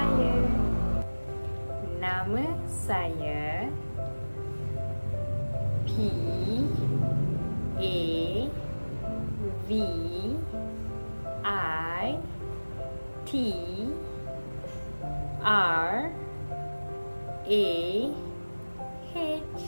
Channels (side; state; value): both; inverted; correlation -1.00